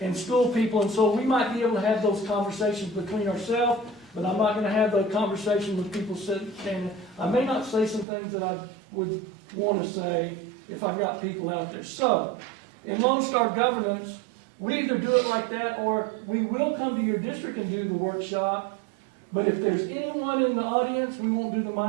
and school people, and so we might be able to have those conversations between ourselves, but I'm not going to have the conversation with people standing. I may not say some things that I would want to say if I've got people out there. So, in Lone Star Governance, we either do it like that or we will come to your district and do the workshop, but if there's anyone in the audience, we won't do the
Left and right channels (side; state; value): left; drops out; at 8.1 s